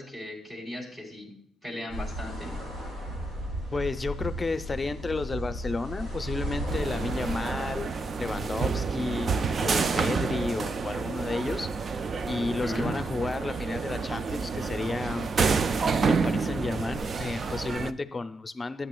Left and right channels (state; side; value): normal; both; correlation 0.83